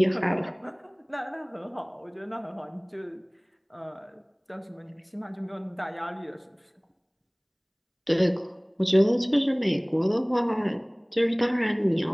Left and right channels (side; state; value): both; identical; correlation 1.00